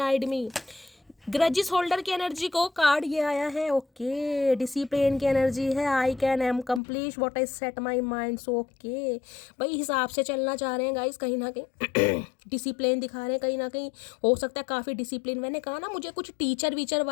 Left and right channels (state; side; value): drops out; right; at 6.8 s